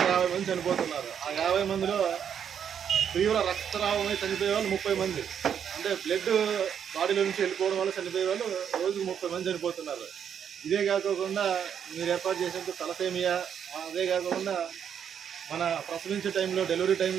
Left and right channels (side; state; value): left; quieter; 8.3 dB